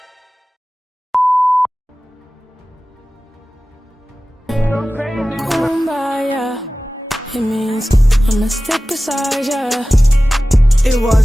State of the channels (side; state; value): both; normal; correlation 0.96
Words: Kumbaya. It means I'ma stick beside ya. It